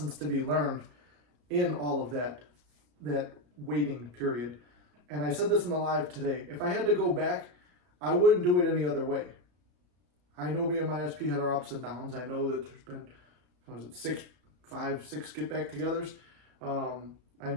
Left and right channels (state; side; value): late; left; 34 ms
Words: to be learned in all of that waiting period. And I said this in the live today. If I had to go back, I wouldn't do it any other way. I know me and my SP had our ups and downs. I know that there's been, what was it, 6 get back togethers. I